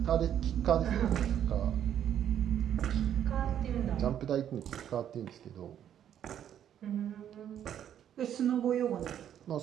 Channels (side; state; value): left; quieter; 10.0 dB